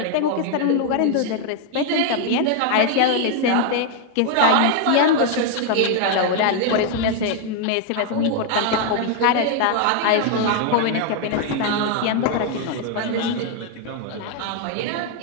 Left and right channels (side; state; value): both; different; correlation 0.00